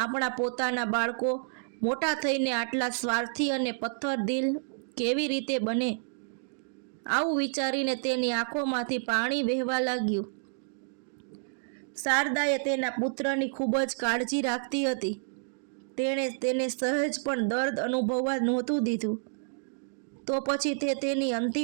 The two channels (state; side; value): silent; left; digital silence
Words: પોતાના બાળકો મોટા થઈને આટલા સ્વાર્થી અને પથ્થરદિલ કેવી રીતે બને? આવું વિચારીને તેની આંખોમાંથી પાણી વહેવા લાગ્યું. શારદાએ તેના પુત્રની ખૂબ જ કાળજી રાખતી હતી. તેણે તેને સહેજ પણ દર્દ અનુભવવા નહોતું દીધું. તો પછી તે તેની